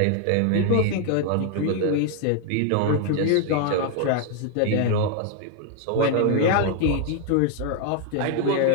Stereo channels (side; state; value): both; different; correlation 0.00